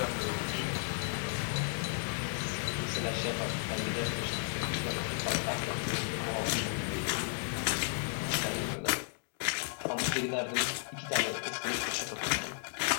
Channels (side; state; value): right; silent; digital silence